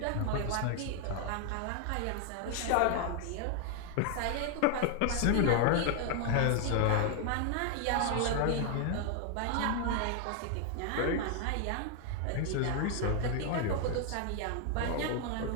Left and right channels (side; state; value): both; different; correlation 0.00